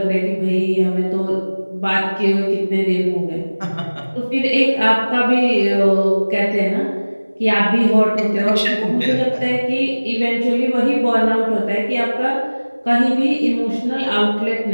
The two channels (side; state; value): both; inverted; correlation -1.00